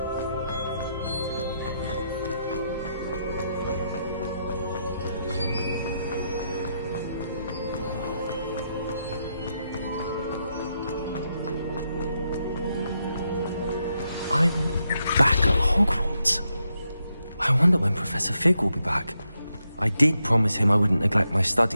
I'm back at Hogwarts. I wonder when Professor Fig will be back. I did promise him I wouldn't neglect my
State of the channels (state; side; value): inverted; both; correlation -0.82